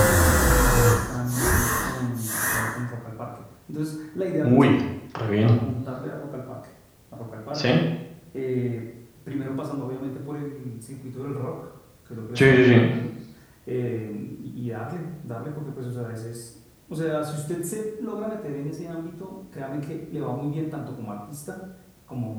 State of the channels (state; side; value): identical; both; correlation 1.00